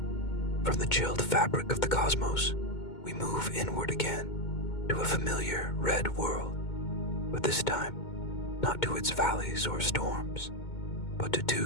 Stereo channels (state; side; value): late; right; 2.2 ms